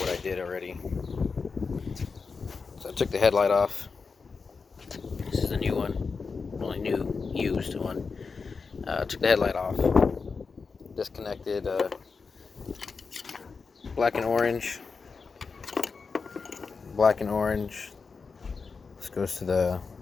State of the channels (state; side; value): quieter; right; 4.9 dB